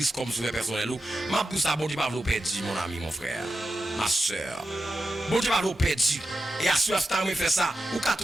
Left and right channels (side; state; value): both; normal; correlation 0.90